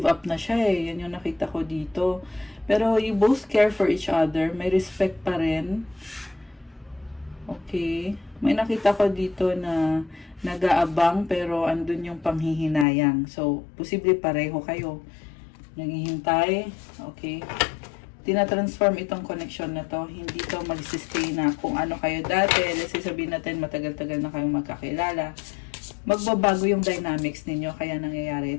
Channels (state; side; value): drops out; right; at 12.9 s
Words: up na siya eh. Yan yung nakita ko dito. Pero you both care for each other. May respect pa rin. Okay. May nakita ko dito na nag-aabang pero andun yung panghihinayang. So, posible pareho kayo. Naghihintay. Okay. Tinatransform itong connection na to. Hindi to mag-stay na kung ano kayo dati. Let's say sabihin natin matagal-tagal na kayong magkakilala. Magbabago yung dynamics ninyo. Kaya nangyayari